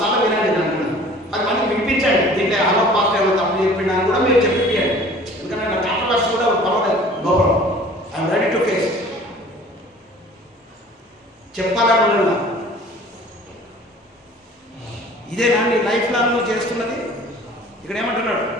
వినండి, నన్ను 10 మందికి వినిపించండి. దీంట్లో హలో పాస్ట్ ఏమో తప్పు చెప్పినా కూడా మీరు చెప్పియండి. ఎందుకంటే నా కాంట్రవర్సీ కూడా పర్వాలేదు, no problem, I'm ready to face. చెప్పాలని ఉన్నా. ఇదేనా నీ లైఫ్ లాంగ్ నువ్వు చేస్తున్నది? ఇక్కడ ఏమంటున్నాడు?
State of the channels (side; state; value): both; normal; correlation 0.48